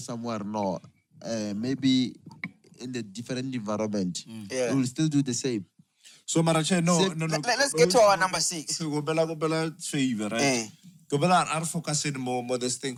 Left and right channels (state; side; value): identical; both; correlation 1.00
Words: somewhere, no. Maybe in the different environment. Yeah. We will still do the same. So Marache, no. Let's get to our number 6. Go bela favor, right? Go bela are focusing more this thing